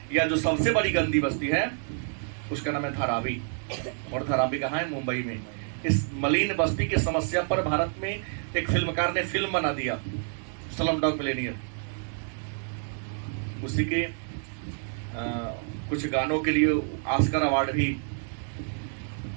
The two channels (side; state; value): left; silent; 59 dB below the other